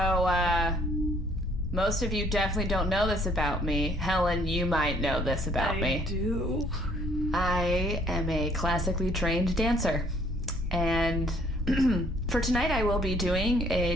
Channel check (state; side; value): normal; both; correlation 0.62